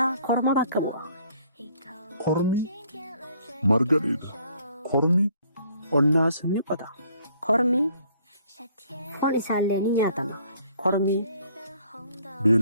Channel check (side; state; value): both; inverted; correlation -0.62